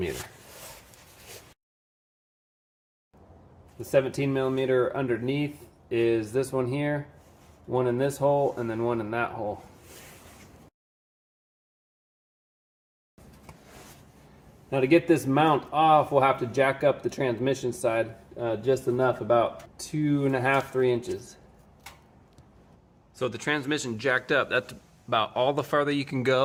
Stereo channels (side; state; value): both; identical; correlation 1.00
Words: The 17 millimeter underneath is this one here, one in this hole, and then one in that hole. Now to get this mount off, we'll have to jack up the transmission side just enough, about 2.5 to 3 inches. So the transmission jacked up, that's about all the farther you can